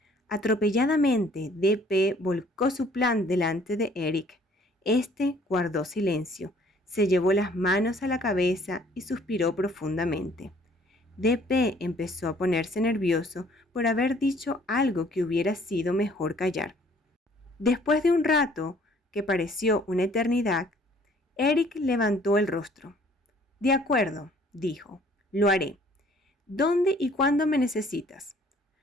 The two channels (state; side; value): normal; both; correlation 0.58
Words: Atropelladamente, DP volcó su plan delante de Eric. Este guardó silencio, se llevó las manos a la cabeza y suspiró profundamente. DP empezó a ponerse nervioso por haber dicho algo que hubiera sido mejor callar. Después de un rato, que pareció una eternidad, Eric levantó el rostro. «De acuerdo», dijo, «lo haré. ¿Dónde y cuándo me necesitas?»